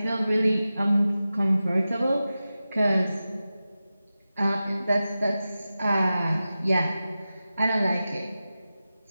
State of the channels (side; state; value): both; inverted; correlation -0.94